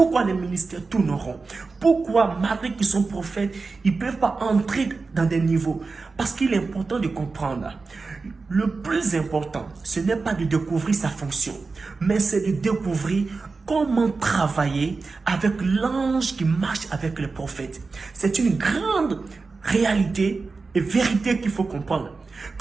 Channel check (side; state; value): left; quieter; 4.2 dB